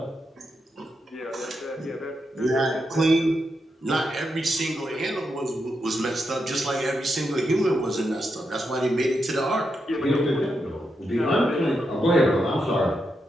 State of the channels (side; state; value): both; normal; correlation 0.84